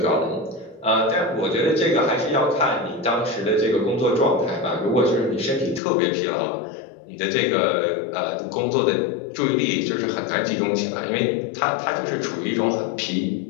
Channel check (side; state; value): right; drops out; at 5.8 s